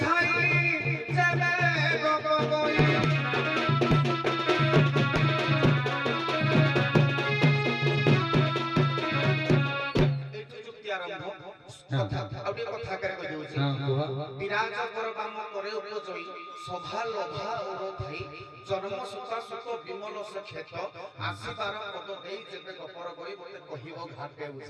যাবে গপ গই বিরাজ কর বাম করে উপজয়ী সভা লোভা ওর ধাই জন্ম সুতা সুত বিমল সে ক্ষেত আসিবার পদ দেই যেতে গপর গই মতে কহিব ঘাটে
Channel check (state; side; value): identical; both; correlation 1.00